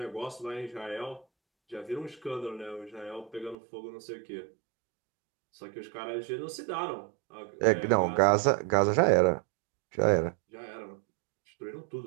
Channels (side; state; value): left; drops out; at 3.6 s